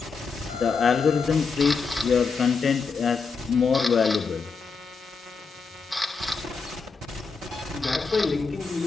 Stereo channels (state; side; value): quieter; right; 4.9 dB